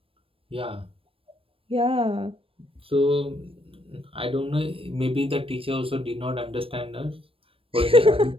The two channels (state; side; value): late; left; 0.27 ms